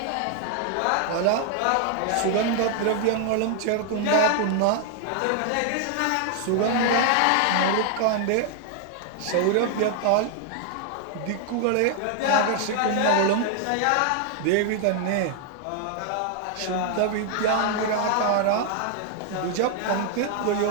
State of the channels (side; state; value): both; different; correlation 0.00